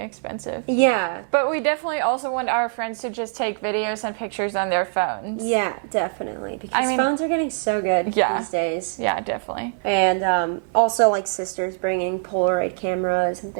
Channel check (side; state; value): left; silent; digital silence